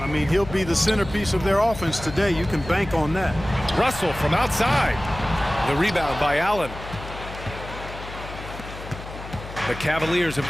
I mean, he'll be the centerpiece of their offense today. You can bank on that. Russell from outside. The rebound by Allen. The Cavaliers have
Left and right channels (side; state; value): left; noise; hum, 12 dB below the sound